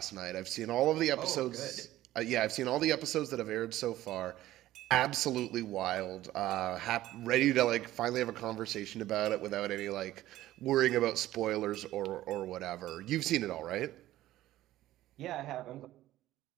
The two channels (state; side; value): quieter; left; 14.8 dB